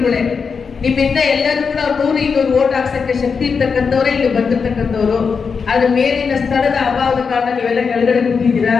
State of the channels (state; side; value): quieter; right; 5.6 dB